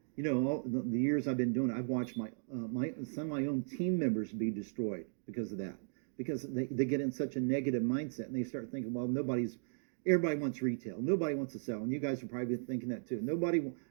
you know, all the years I've been doing it, I've watched some of my own team members be destroyed because of that. Because they get in such a negative mindset and they start thinking, well, everybody wants retail. Nobody wants to sell. And you guys are probably thinking that too. Nobody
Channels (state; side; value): silent; left; digital silence